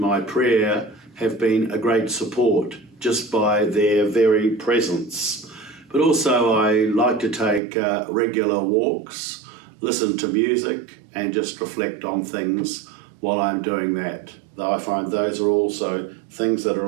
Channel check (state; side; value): drops out; left; at 7.6 s